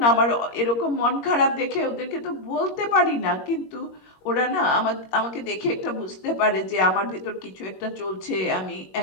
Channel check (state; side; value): late; right; 21 ms